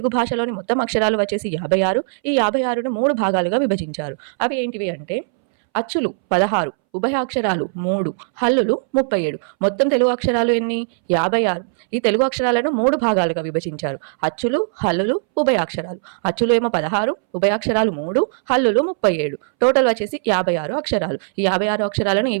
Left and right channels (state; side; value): silent; left; 64 dB below the other